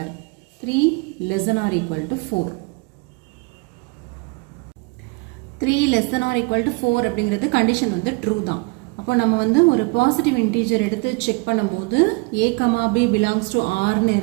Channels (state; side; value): quieter; left; 28.7 dB